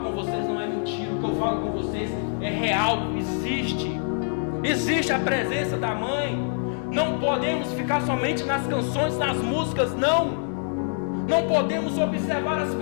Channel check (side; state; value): right; silent; digital silence